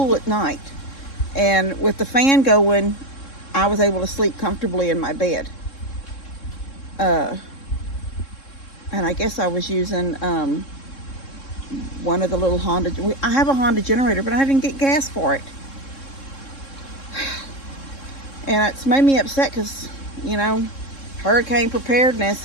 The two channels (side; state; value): right; late; 3.7 ms